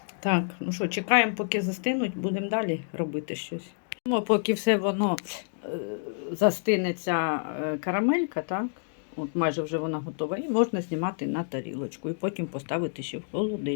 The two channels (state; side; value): silent; right; digital silence